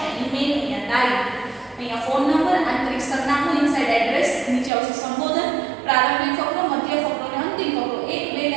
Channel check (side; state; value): left; drops out; at 4.7 s